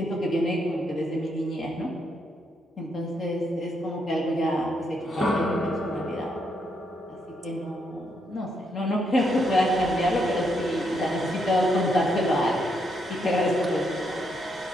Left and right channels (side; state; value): both; normal; correlation 0.77